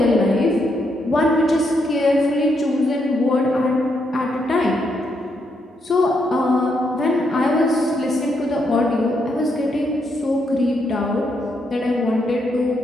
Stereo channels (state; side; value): normal; both; correlation 0.78